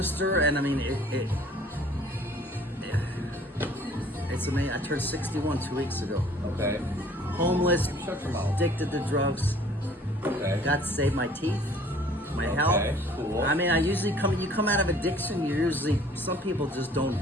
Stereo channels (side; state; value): both; normal; correlation 0.53